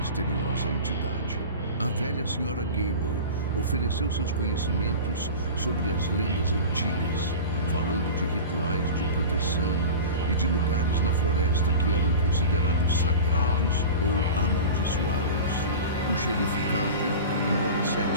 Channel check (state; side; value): inverted; both; correlation -0.33